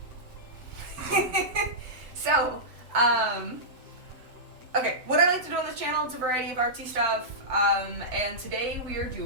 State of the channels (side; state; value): left; late; 7.8 ms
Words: So, okay, what I like to do on this channel is a variety of artsy stuff, and today we are